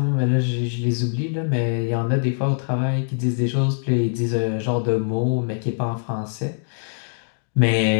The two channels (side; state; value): right; silent; 64 dB below the other